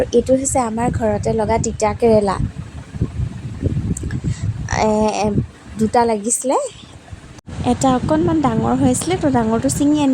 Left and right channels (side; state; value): both; identical; correlation 1.00